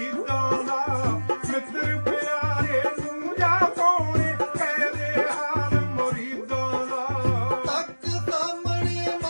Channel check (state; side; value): inverted; both; correlation -1.00